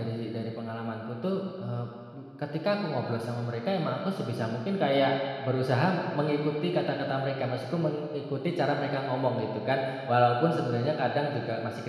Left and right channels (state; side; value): identical; both; correlation 1.00